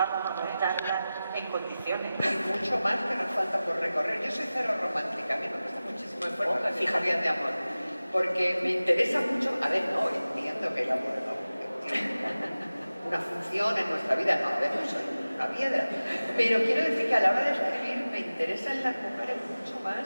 a montarla en condiciones? Hay mucho más que nos falta por recorrer. Yo soy cero romántica, a mí me cuesta muchísimo esfuerzo las historias de amor, porque me interesa mucho, a ver, no, entiendo que el amor no tiene una función en nuestra vida, no, a ver, no soy una piedra, pero quiero decir que a la hora de escribir me interesan las mujeres mucho más,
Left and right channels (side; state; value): both; inverted; correlation -0.96